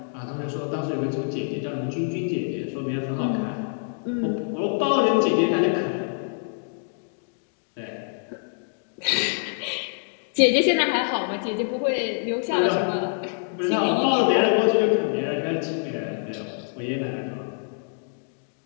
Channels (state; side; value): silent; right; digital silence